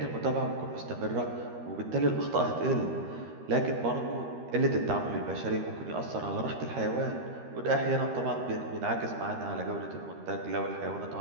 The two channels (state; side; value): late; left; 13 ms